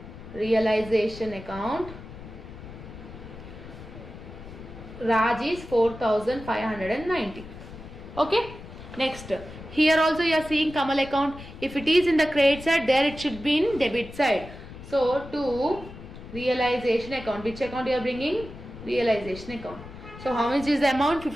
realization account, Raj is 4590. Okay. Next, here also you are seeing Kamal account. If it is in the credit side, there it should be in debit side. So to realization account, which account you are bringing? Realization account. So how much is the amount?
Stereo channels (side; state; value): left; noise; rumble, 14 dB below the sound